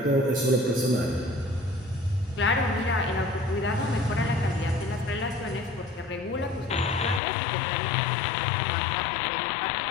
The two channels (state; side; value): drops out; right; at 7.2 s